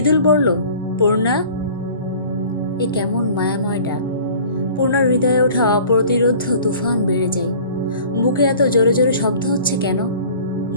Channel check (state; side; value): inverted; both; correlation -0.47